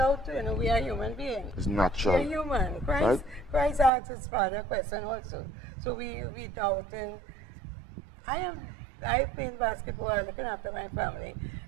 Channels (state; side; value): drops out; left; at 3.9 s